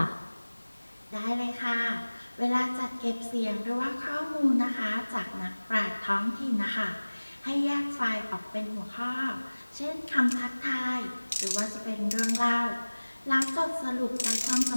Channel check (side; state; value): both; inverted; correlation -1.00